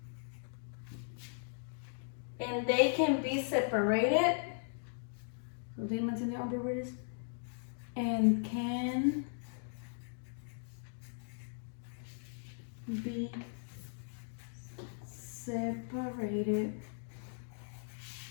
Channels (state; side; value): silent; right; digital silence